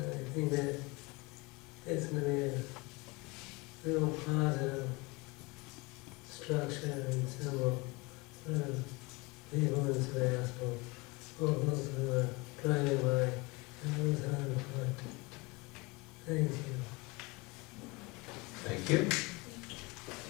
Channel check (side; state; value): right; quieter; 25.5 dB